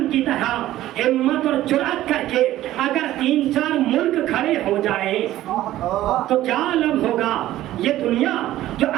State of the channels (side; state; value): left; quieter; 14.4 dB